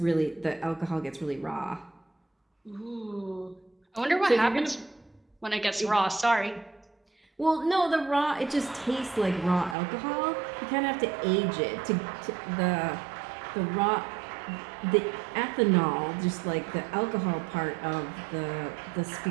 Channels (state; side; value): drops out; left; at 9.8 s